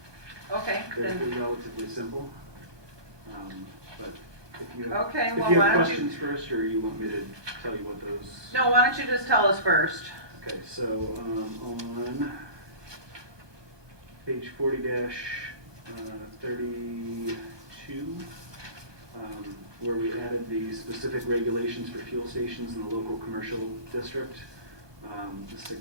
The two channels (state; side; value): late; left; 1.2 ms